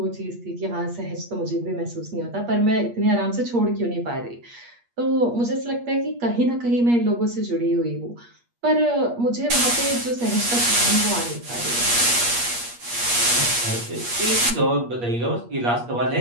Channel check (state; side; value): late; left; 8.4 ms